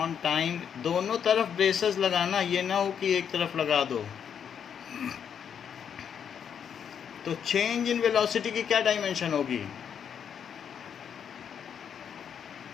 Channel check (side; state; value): right; quieter; 7.9 dB